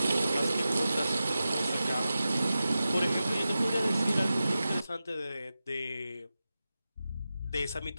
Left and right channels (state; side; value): inverted; both; correlation -0.93